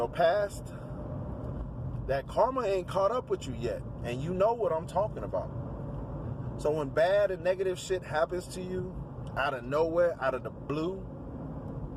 past that karma ain't caught up with you yet, and you know what I'm talking about. So when bad and negative shit happens to you out of nowhere, out of the blue,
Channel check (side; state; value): both; identical; correlation 1.00